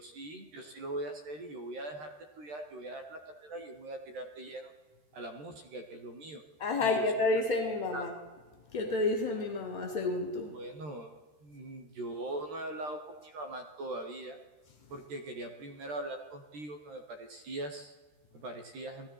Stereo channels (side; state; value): left; late; 13 ms